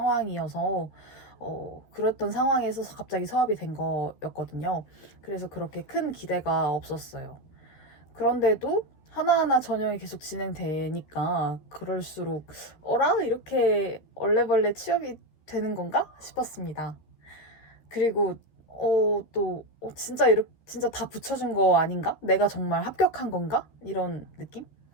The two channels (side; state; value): right; late; 13 ms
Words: 그랬던 상황에서 갑자기 서합이 된 거였거든요. 그래서 그렇게 큰 기대가 없었어요. 그런데도 하나하나 전형이 계속 진행되니까 그럴수록 어라? 이렇게 얼레벌레 취업이 되는 건가? 싶었습니다. 그리고 진짜 다 붙여준 거 아닌가? 내가 정말 합격한 건가? 이런 느낌?